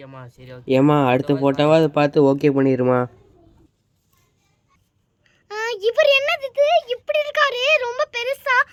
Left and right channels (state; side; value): identical; both; correlation 1.00